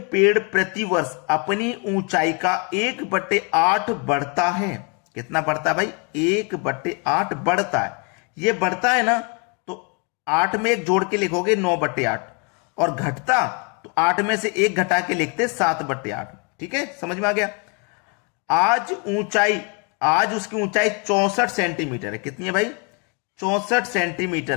पेड़ प्रतिवर्ष अपनी ऊंचाई का 1/8 बढ़ता है, कितना बढ़ता है भाई, 1/8 बढ़ता है, ये बढ़ता है ना, तो 8 में एक जोड़ के लिखोगे 9/8, और घटता तो 8 में से एक घटा के लिखते 7/8। ठीक है, समझ में आ गया। आज उसकी ऊंचाई 64 सेंटीमीटर है। कितनी है भाई? 64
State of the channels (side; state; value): right; quieter; 34.9 dB